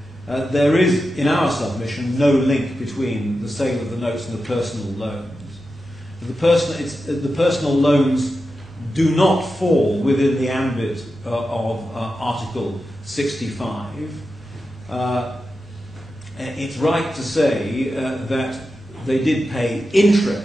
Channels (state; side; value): normal; both; correlation 0.91